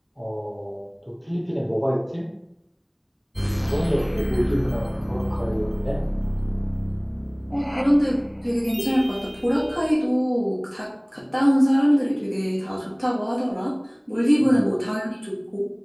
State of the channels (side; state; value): both; identical; correlation 1.00